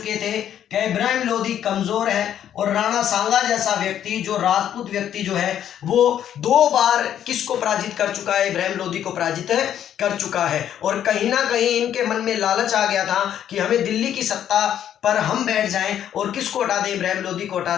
थे कि इब्राहिम लोधी कमजोर है और राणा सांगा जैसा व्यक्ति, जो राजपूत व्यक्ति जो है, वो 2 बार किसको पराजित कर चुका है, इब्राहिम लोधी को पराजित कर चुका है। और कहीं ना कहीं इनके मन में लालच आ गया था कि हमें दिल्ली की सत्ता पर हम बैठ जाएं और किसको हटा दें, इब्राहिम लोधी को हटा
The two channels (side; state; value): right; quieter; 10.2 dB